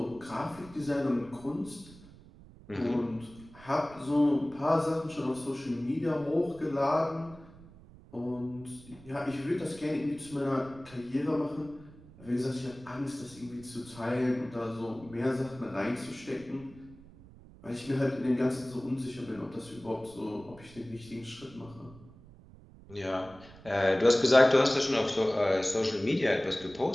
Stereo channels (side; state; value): right; noise; rumble, 21 dB below the sound